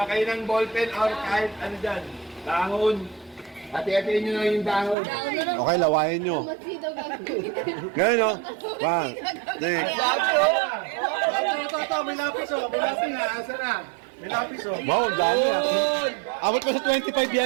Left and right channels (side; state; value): left; drops out; at 5.0 s